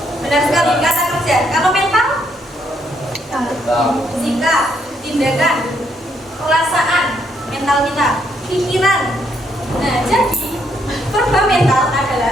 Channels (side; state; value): both; normal; correlation 0.73